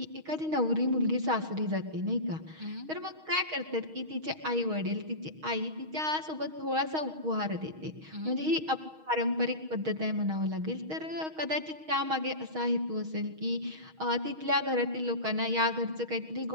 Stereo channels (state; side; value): late; left; 6.4 ms